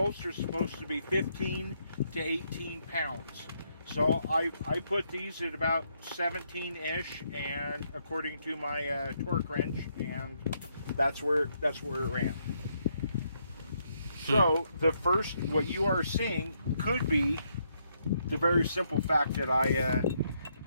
are supposed to be 15 to 18 pounds. So I put these at about 17-ish, and according to my torque wrench, and that's where it ran. So the first, what you are seeing could be the very simple fact that I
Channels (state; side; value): inverted; both; correlation -0.76